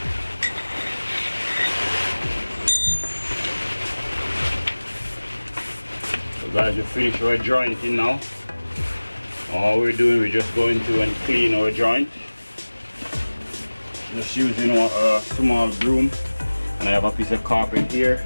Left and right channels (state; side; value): inverted; both; correlation -1.00